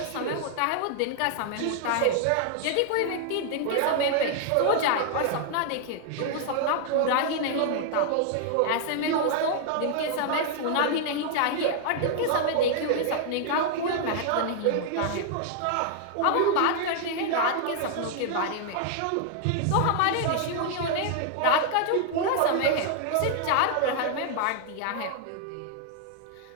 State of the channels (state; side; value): different; both; correlation 0.00